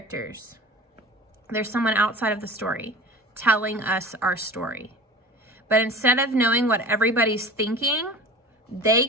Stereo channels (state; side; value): normal; both; correlation 0.38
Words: There's someone outside of the story telling us our story. But instead of knowing what everybody's thinking, they